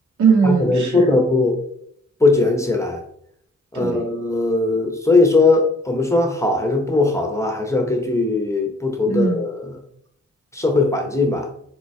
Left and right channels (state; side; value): normal; both; correlation 0.60